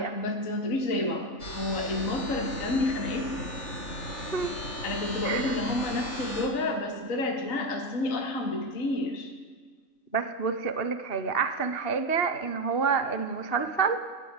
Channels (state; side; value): late; right; 2.8 ms